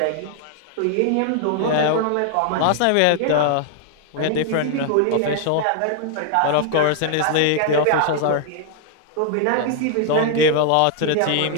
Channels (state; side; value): different; both; correlation 0.00